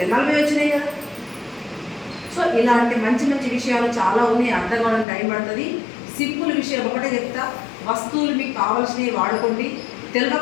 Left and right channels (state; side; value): drops out; right; at 5.1 s